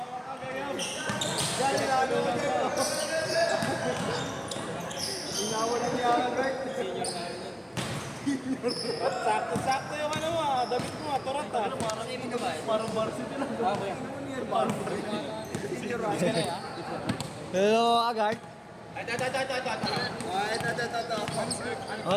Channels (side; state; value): both; identical; correlation 1.00